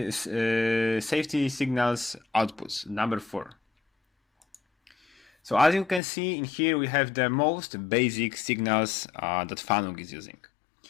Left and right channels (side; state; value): right; drops out; at 6.0 s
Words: safety signals outputs, number 4. So as you can see in here, we have the most basic signals that FANUC is using.